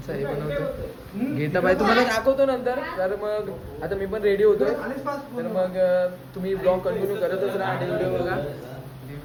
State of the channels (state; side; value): identical; both; correlation 1.00